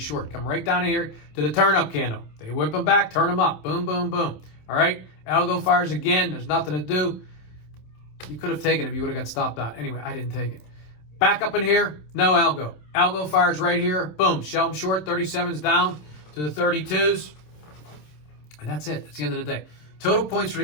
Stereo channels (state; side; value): late; right; 27 ms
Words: Come right down here to the turn-up candle. They whip them back, turn them up. Boom, boom, boom. All right? Algo fires again. There's nothing to do. You could have taken it if you would have got stopped out. Anyway, I didn't take it. Back up in here, no algo. Algo fires right here. Boom, shell them short. 37s down to the 32s. And that's it. That's the end of the day. Total points